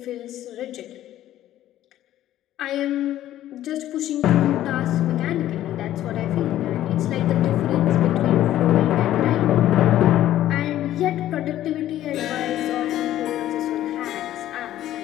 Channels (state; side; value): quieter; right; 13.1 dB